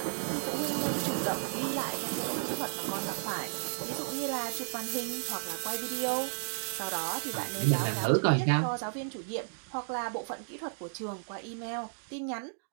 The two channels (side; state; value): left; silent; digital silence